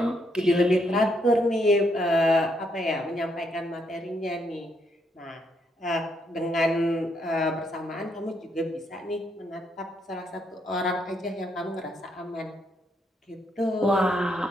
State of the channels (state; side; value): normal; both; correlation 0.75